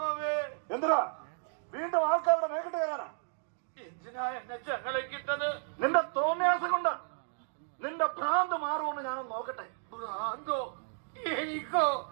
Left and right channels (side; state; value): left; silent; 56 dB below the other